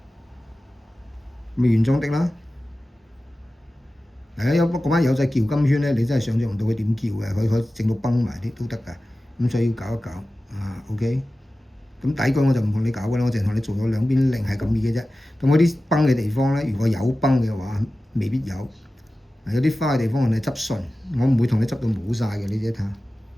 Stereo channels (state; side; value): normal; both; correlation 0.95